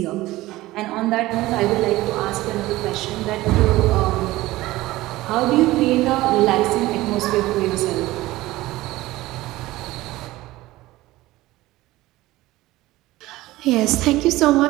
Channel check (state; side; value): quieter; left; 17.8 dB